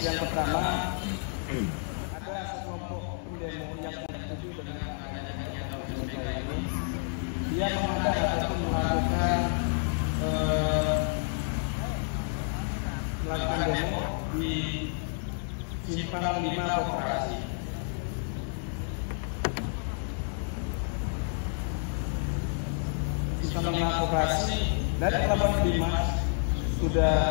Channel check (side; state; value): right; silent; 58 dB below the other